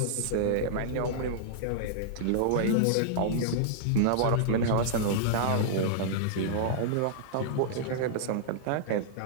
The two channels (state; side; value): different; both; correlation -0.01